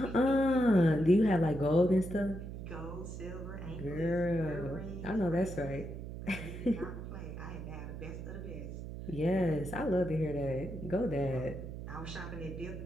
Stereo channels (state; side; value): noise; right; hum, 9 dB below the sound